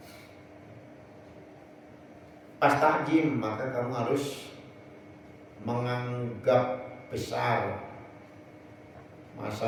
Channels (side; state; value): both; identical; correlation 1.00